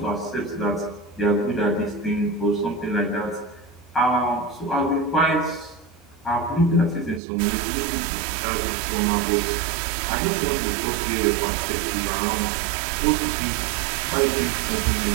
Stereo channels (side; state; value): left; drops out; at 7.2 s